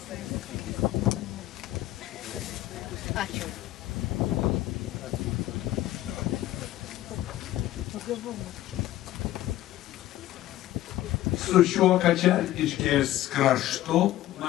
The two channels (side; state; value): right; quieter; 14.6 dB